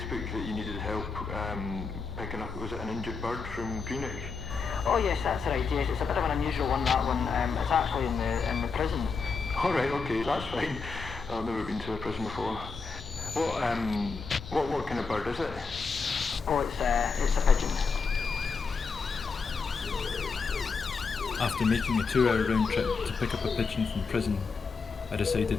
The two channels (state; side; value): quieter; right; 4.9 dB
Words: that you needed help picking up, was it an injured bird from Greenwich? Oh yes, that's right, yes, it's a bit of an unusual one, that one. It's actually in the prison. Alright, okay, that's fine. I've never been to a prison before. What kind of bird is it? Oh, it's a pigeon. After making a 2-hour round trip to pick up a pigeon from prison, I decided